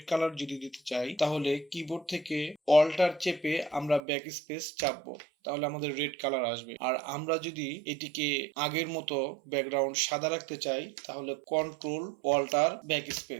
কালার যদি দিতে চাই তাহলে কিবোর্ড থেকে অল্টার চেপে আমরা ব্যাক স্পেস চাপবো, তাহলে আমাদের রেড কালার আসবে। আর আমরা যদি এটিকে আগের মতো ব্যাকগ্রাউন্ড সাদা রাখতে চাই তাহলে কন্ট্রোল অল্টার ব্যাক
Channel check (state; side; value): drops out; left; at 4.0 s